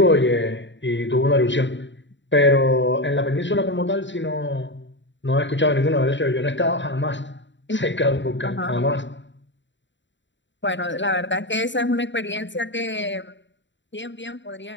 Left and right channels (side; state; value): right; late; 0.53 ms